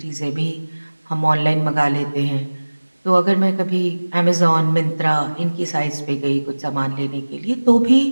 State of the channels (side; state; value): both; inverted; correlation -1.00